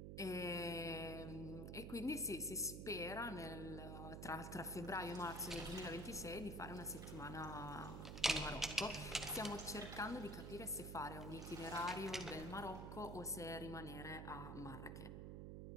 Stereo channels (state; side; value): noise; right; hum, 6 dB below the sound